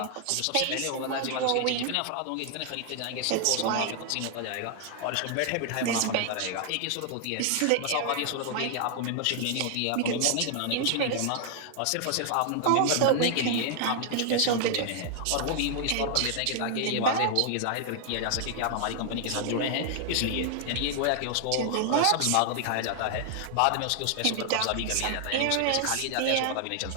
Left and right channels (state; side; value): different; both; correlation 0.00